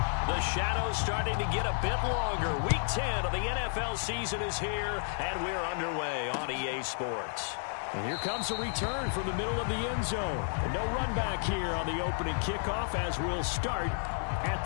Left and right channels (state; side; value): silent; right; digital silence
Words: The shadows starting to get a bit longer. Week 10 of the NFL season is here, and we're underway on EA Sports. And here comes a return from the middle of the end zone. And no run back here on the opening kickoff as we'll start at